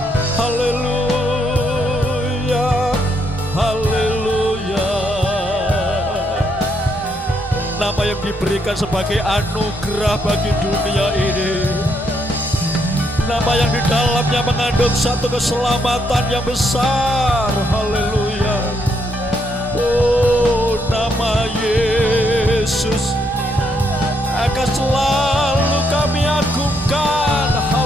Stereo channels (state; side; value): normal; both; correlation 0.75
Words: Haleluya, haleluya. nama yang diberikan sebagai anugerah bagi dunia ini. Nama yang di dalamnya mengandung satu keselamatan yang besar. Haleluya. Oh, nama Yesus akan selalu kami agungkan.